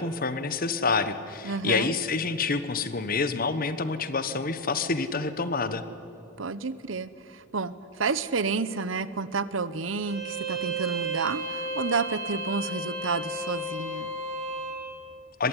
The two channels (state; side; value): normal; both; correlation -0.01